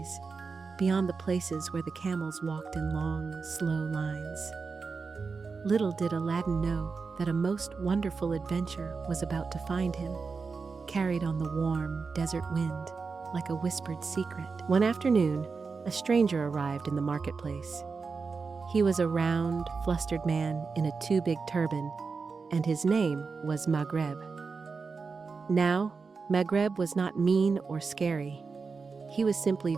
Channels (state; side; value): quieter; left; 4.8 dB